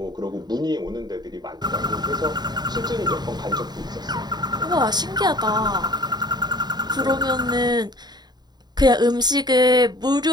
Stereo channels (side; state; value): left; late; 0.20 ms